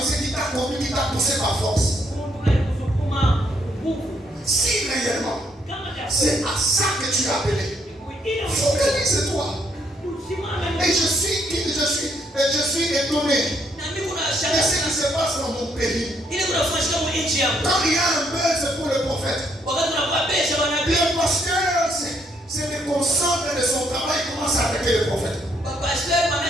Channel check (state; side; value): normal; both; correlation 0.71